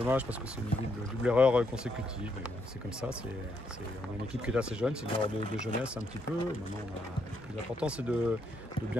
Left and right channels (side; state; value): both; normal; correlation 0.76